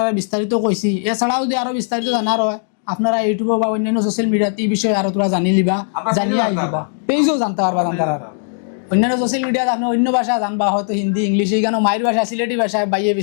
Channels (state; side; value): silent; right; 67 dB below the other